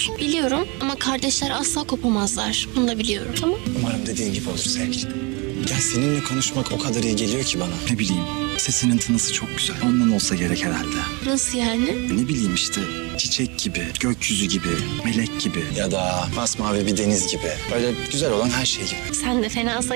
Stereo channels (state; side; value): quieter; left; 29.0 dB